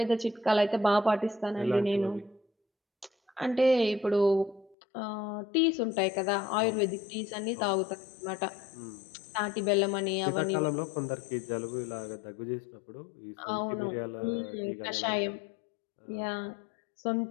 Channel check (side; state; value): right; drops out; at 4.8 s